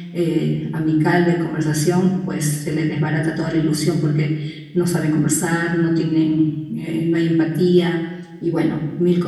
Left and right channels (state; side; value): identical; both; correlation 1.00